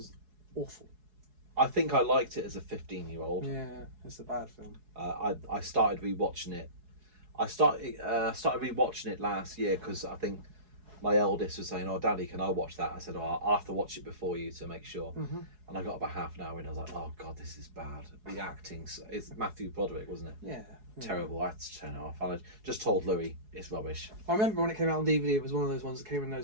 awful. I think I liked it as a 15-year-old. Yeah, it's a bad film. I started rewatching it. I started rewatching it last year because I think my eldest was saying, "Oh, Daddy, can I watch that?" I said, "Oh, I'll have to watch it before you to make sure." Mm-hmm. And I got about half an hour in. I was like, "Oh God, this is bad." The acting's it's Matthew Broderick, wasn't it? Yeah. Terrible. I had to turn it off. And I just told Louis it's rubbish. I remember when it came out on DVD, it was one of those ones that came in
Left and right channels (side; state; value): left; late; 4.7 ms